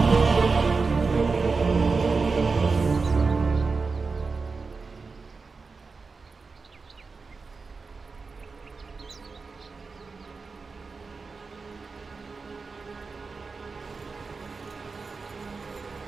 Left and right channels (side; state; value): left; quieter; 4.4 dB